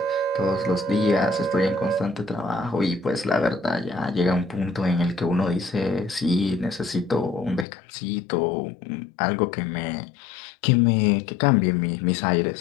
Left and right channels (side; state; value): right; drops out; at 7.7 s